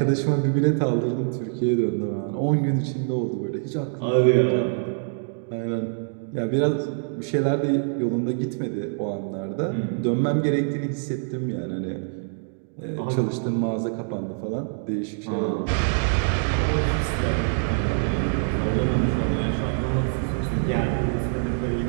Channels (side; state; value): left; silent; digital silence